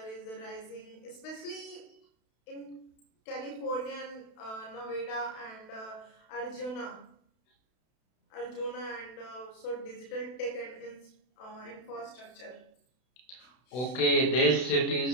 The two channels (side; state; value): right; late; 32 ms